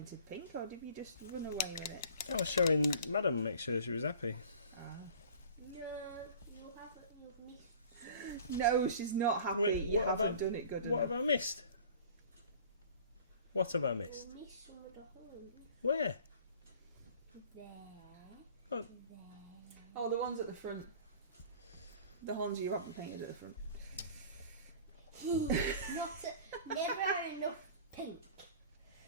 pink, or did you just run away with it? I was showing Madam, make sure she was happy. No, you haven't. You've missed. No, she's not happy. Wait, you haven't done it good enough. What have I missed? What have I missed? You missed some of the holes. Where? There. Oh. There. Oh, the ones at the front. The horns you haven't painted at the front. Never enough pink.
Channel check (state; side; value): inverted; both; correlation -0.45